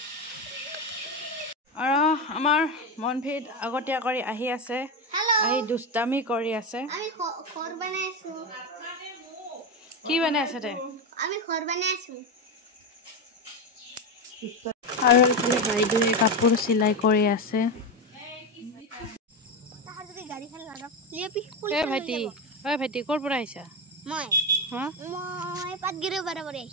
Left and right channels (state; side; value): normal; both; correlation 0.13